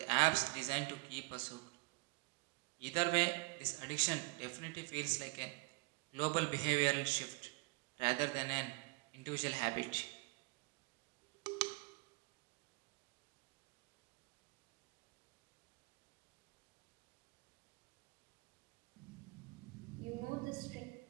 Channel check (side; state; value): left; quieter; 26.3 dB